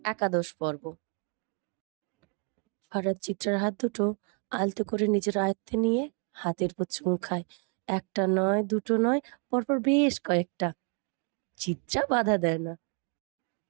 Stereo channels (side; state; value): left; quieter; 38.6 dB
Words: একাদশ পর্ব। ফারাদ চিত্রার হাত দুটো আলতো করে নিজের আয়ত্তে নিয়ে হাতের উপর চুমু খায়। একটা নয়, দুটো নয়, পরপর বেশ কয়েকটা। চিত্রা বাধা দেয় না,